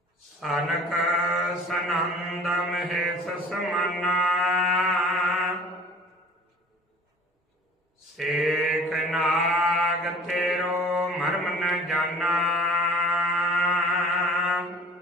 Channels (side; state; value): both; normal; correlation 0.46